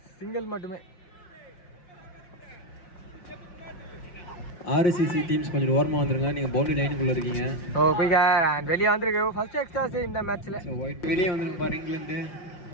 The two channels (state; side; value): late; right; 5.6 ms